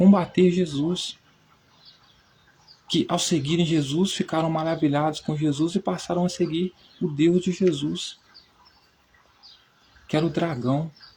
Jesus. Que ao seguirem Jesus ficaram maravilhados com Jesus e passaram a seguir o Deus de Jesus, que era o dragão.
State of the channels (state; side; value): identical; both; correlation 1.00